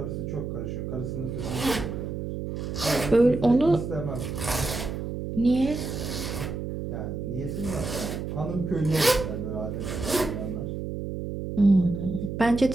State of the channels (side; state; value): right; noise; hum, 5 dB below the sound